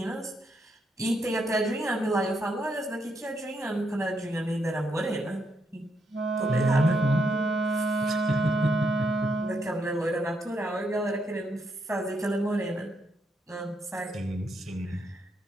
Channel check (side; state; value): both; normal; correlation 0.78